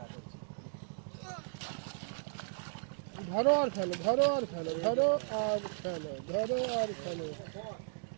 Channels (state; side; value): silent; left; digital silence